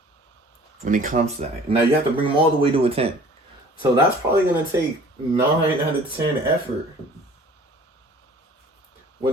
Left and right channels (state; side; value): normal; both; correlation 0.49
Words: when it comes to that. Now you have to bring them all the way to a 10. So that's probably going to take 9 out of 10 effort. When